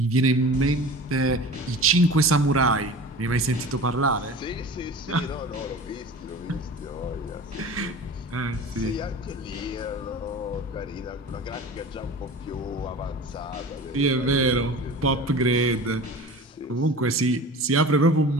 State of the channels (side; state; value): both; normal; correlation 0.37